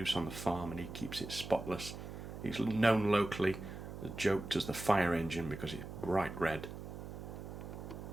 on the farm and he keeps it spotless. It's known locally, joked as the fire engine because it's bright red.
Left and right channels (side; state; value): right; noise; hum, 10 dB below the sound